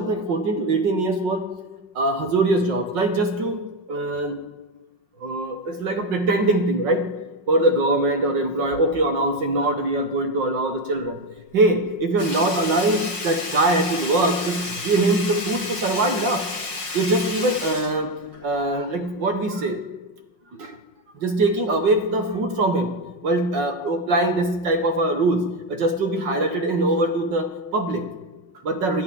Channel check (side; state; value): left; late; 5.5 ms